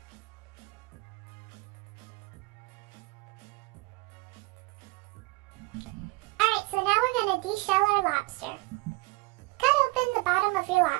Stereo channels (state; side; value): quieter; left; 24.6 dB